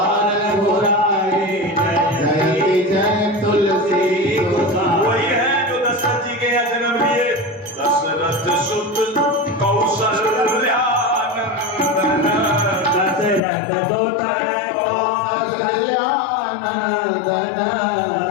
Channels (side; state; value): right; drops out; at 13.4 s